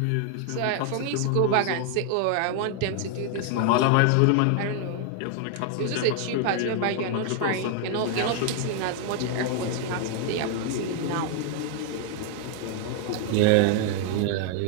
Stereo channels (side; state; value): both; different; correlation 0.00